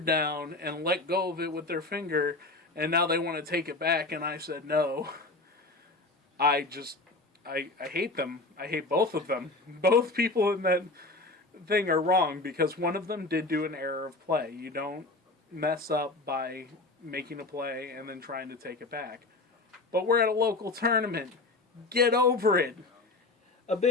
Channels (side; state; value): right; quieter; 3.2 dB